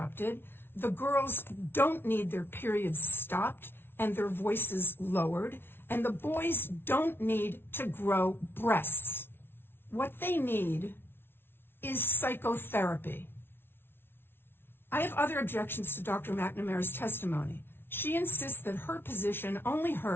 the girls don't need their periods stopped and their voices lowered, and the boys don't need to grow breasts. What they need is psychotherapy. I have other objections to Dr. McNamara's testimony. She insists that her position, only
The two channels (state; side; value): late; right; 0.11 ms